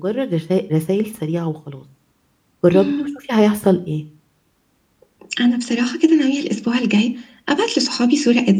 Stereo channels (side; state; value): both; identical; correlation 1.00